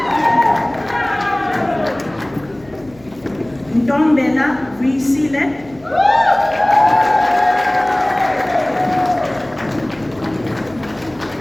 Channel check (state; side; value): noise; left; hum, 25 dB below the sound